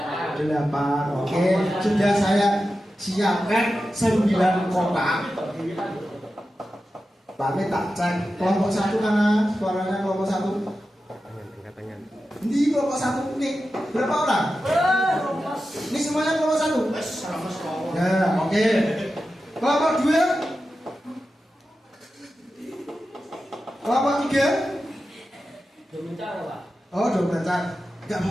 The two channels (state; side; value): normal; both; correlation 0.92